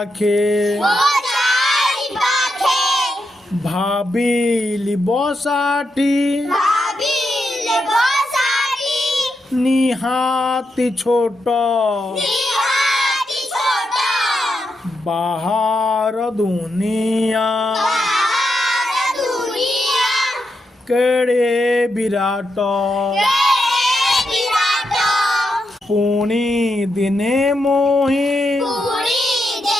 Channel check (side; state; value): both; normal; correlation 0.84